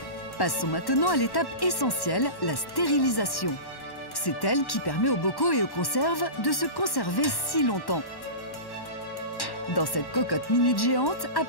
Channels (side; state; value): right; late; 1.1 ms